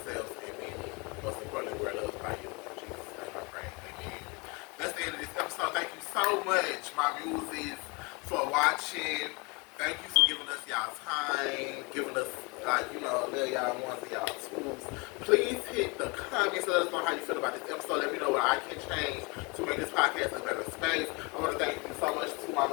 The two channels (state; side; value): quieter; right; 29.1 dB